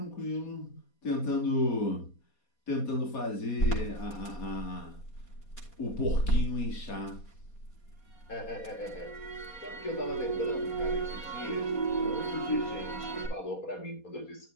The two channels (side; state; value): right; late; 4.2 ms